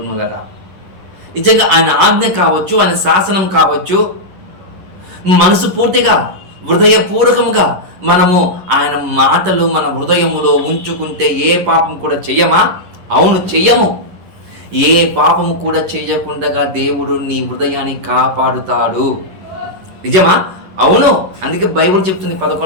వలన. నిజంగా ఆయన ఆజ్ఞ కావచ్చు, ఆయన శాసనం కావచ్చు, మనసు పూర్తిగా హృదయపూర్వకముగా మనము ఆయన మాటలు మన హృదయములో ఉంచుకుంటే ఏ పాపం కూడా చెయ్యమా? అవును, చెయ్యము. ఏ పాపము కూడా చేయకుండా దేవుడు నీ హృదయాన్ని కాపాడుతాడు. నిజమా? అవును. అందుకే బైబిల్ చెప్తుంది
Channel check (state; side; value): late; left; 11 ms